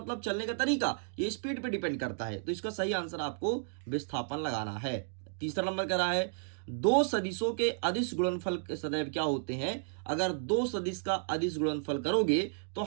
चलने का तरीका, ये स्पीड पे डिपेंड करता है। तो इसका सही आंसर आपको विस्थापन लगाना है। तीसरा नंबर कह रहा है दो सदिशों के अदिश गुणनफल सदैव क्या होते हैं। अगर दो सदिश का अदिश गुणनफल करोगे तो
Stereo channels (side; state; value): left; silent; digital silence